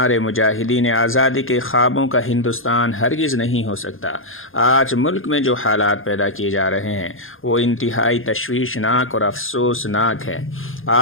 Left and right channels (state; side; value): late; right; 0.59 ms